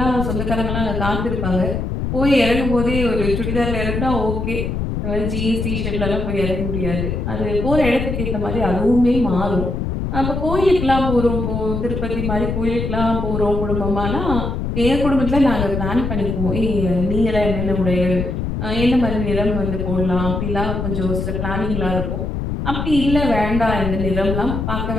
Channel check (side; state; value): left; noise; rumble, 2 dB below the sound